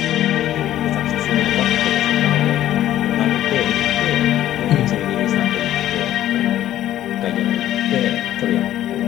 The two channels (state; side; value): quieter; right; 12.8 dB